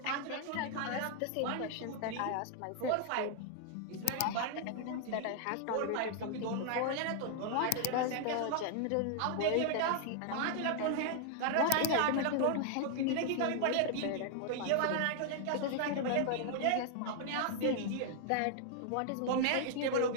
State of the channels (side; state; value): both; different; correlation 0.00